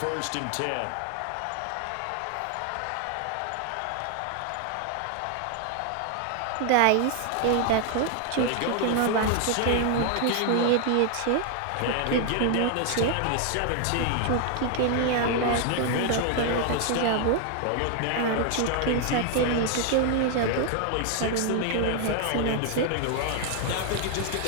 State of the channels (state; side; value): different; both; correlation 0.00